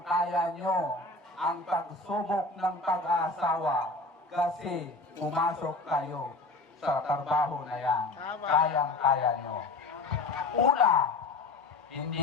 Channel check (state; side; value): quieter; right; 3.3 dB